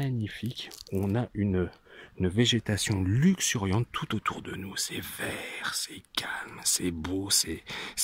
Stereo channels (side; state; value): both; identical; correlation 1.00